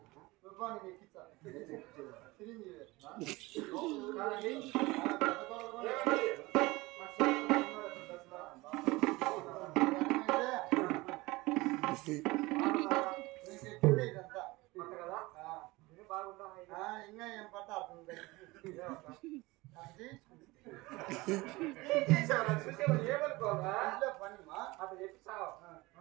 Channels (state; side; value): quieter; left; 21.6 dB